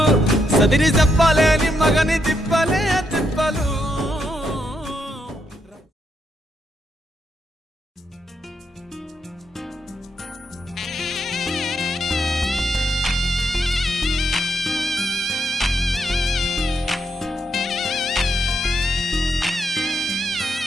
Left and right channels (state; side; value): normal; both; correlation 0.80